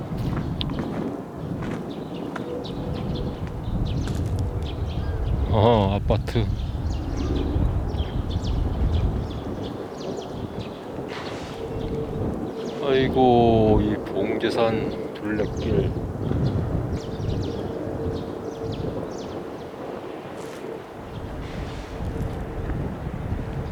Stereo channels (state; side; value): identical; both; correlation 1.00